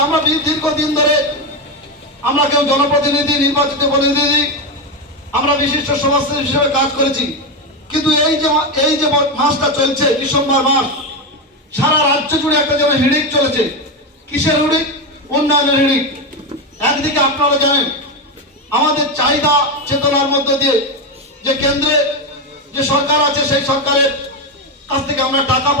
আমরা দীর্ঘদিন ধরে আমরা কেউ জনপ্রতিনিধি, নির্বাচিত প্রতিনিধি, আমরা বিশিষ্ট সমাজসেবী হিসেবে কাজ করেছি। কিন্তু এই যে মাসটা চলছে, ডিসেম্বর মাস, সারা রাজ্য জুড়ে একটা যেন হিড়িক চলেছে। কিসের হিড়িক? উন্নয়নের হিড়িক। একদিকে আপনারা জানেন আমাদের চাহিদা চেতনার মধ্যে দিয়ে যে কেন্দ্রে যে সরকার আছে, সেই সরকারের কাছ থেকে আমরা টাকা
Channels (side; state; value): both; normal; correlation 0.11